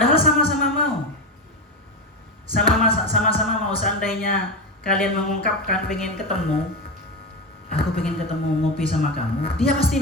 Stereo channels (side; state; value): both; normal; correlation 0.16